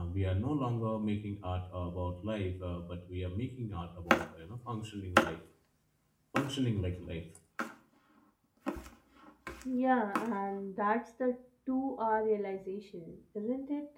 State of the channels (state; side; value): identical; both; correlation 1.00